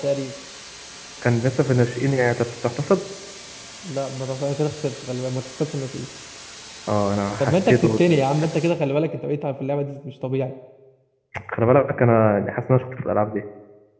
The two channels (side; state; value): both; identical; correlation 1.00